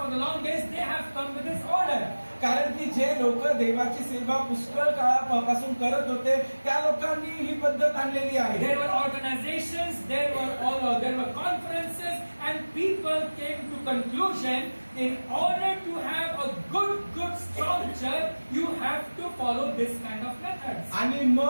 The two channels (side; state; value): both; inverted; correlation -1.00